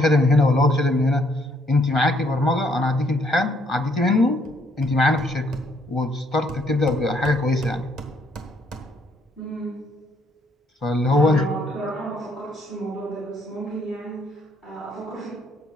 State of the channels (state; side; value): normal; both; correlation 0.68